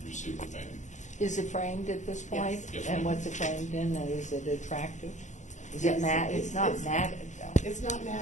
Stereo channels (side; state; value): right; late; 0.35 ms